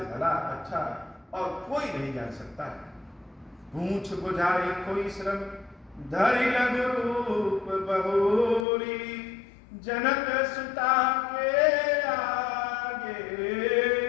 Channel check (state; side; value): drops out; right; at 8.7 s